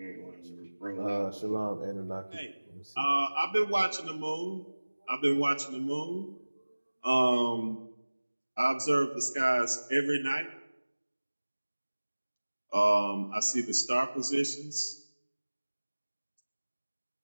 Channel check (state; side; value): inverted; both; correlation -1.00